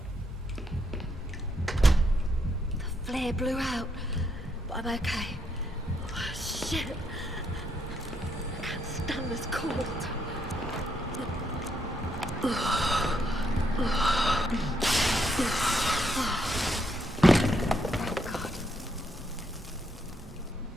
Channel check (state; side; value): normal; both; correlation 0.76